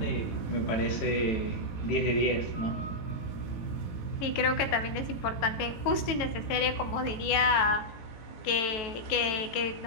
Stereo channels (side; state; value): right; late; 18 ms